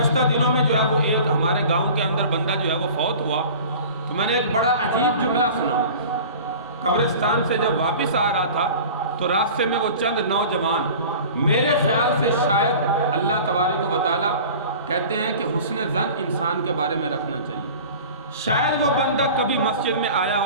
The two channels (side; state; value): both; inverted; correlation -0.40